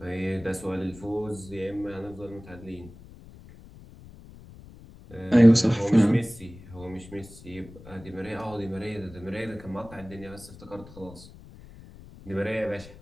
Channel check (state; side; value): noise; left; rumble, 19 dB below the sound